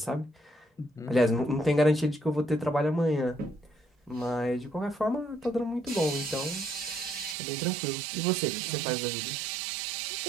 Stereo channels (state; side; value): drops out; left; at 7.4 s